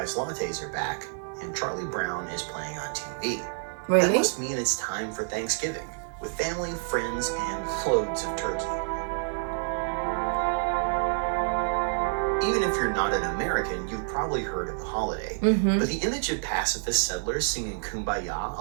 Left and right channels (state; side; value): silent; left; digital silence